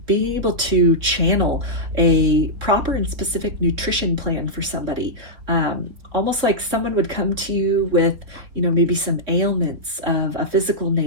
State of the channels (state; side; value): late; left; 3.7 ms